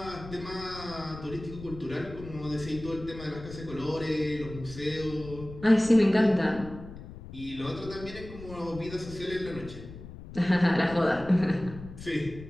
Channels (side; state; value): left; noise; rumble, 14 dB below the sound